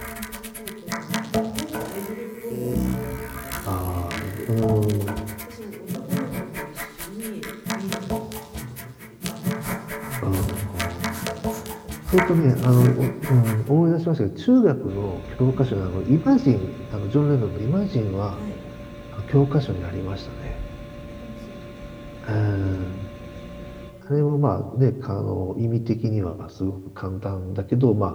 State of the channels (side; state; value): both; identical; correlation 1.00